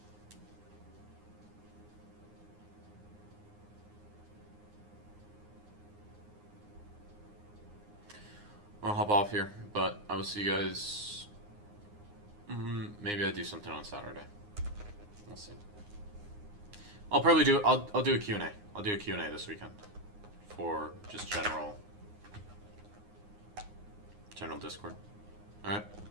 I'll hop off here, but I will see you guys. Maybe I do something on Saturday. We'll see. I'll probably do. I'll do a Q&A. I'll do a Q&A this weekend for just general Discord. All right.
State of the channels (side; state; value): left; late; 9.7 ms